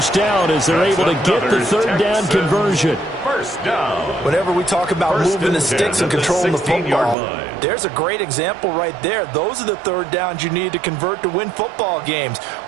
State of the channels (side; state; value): left; drops out; at 7.2 s